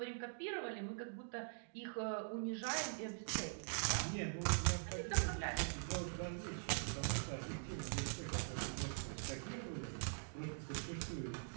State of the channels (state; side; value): silent; left; digital silence